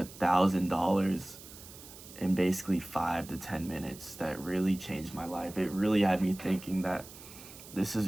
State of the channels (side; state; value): right; noise; hiss, 17 dB below the sound